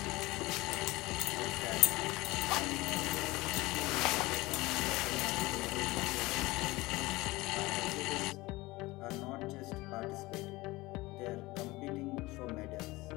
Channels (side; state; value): right; quieter; 20.7 dB